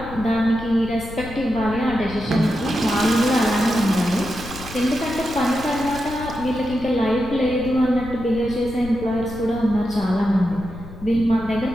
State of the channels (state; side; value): noise; left; rumble, 14 dB below the sound